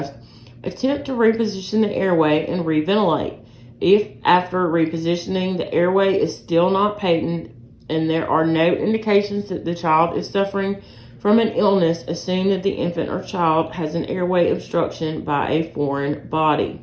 attempt to reposition the airway and reventilate. If after repositioning the airway is still not patent and there are no indications that the child is suffering from an illness, assume that the infant or child has an airway obstruction by a foreign body.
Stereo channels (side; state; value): both; identical; correlation 1.00